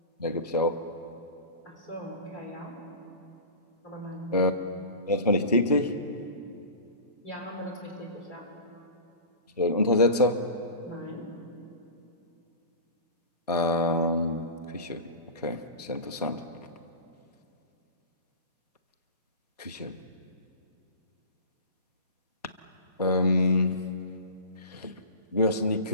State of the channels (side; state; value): both; inverted; correlation -0.33